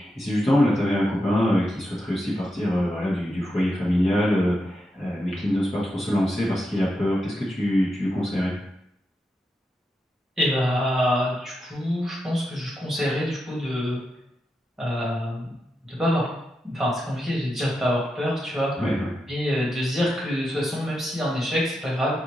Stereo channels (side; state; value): both; normal; correlation 0.86